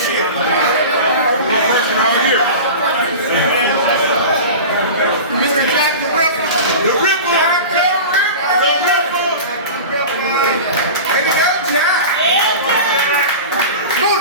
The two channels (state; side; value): inverted; both; correlation -0.32